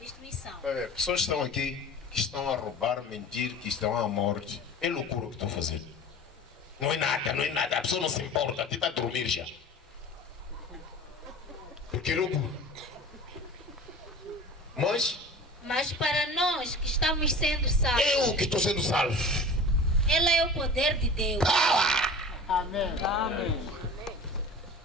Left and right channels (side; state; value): both; normal; correlation 0.39